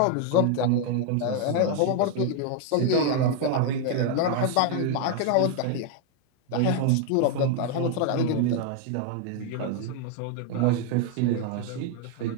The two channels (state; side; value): different; both; correlation 0.00